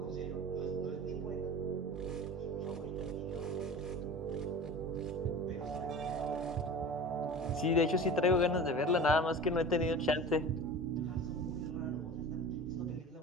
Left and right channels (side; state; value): both; normal; correlation 0.35